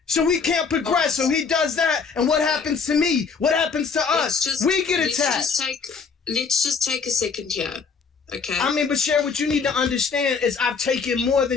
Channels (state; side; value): quieter; right; 5.4 dB